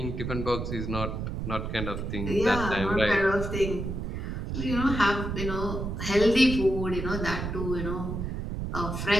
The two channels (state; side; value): noise; right; rumble, 4 dB below the sound